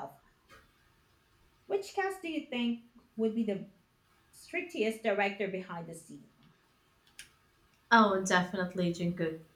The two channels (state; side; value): identical; both; correlation 1.00